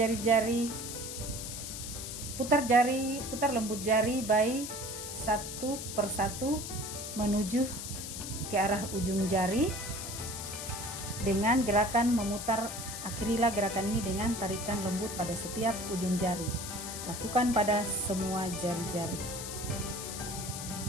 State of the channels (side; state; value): left; noise; hiss, 7 dB below the sound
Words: lembut jari bayi satu persatu menuju ke arah ujung jari dengan gerakan memutar. Akhirilah gerakan ini dengan tarikan lembut pada setiap ujung jari. Lakukan pada semua jari-jari.